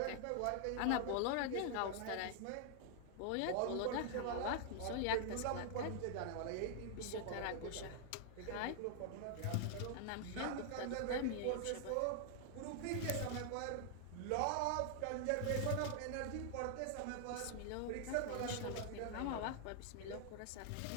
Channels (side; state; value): both; different; correlation 0.00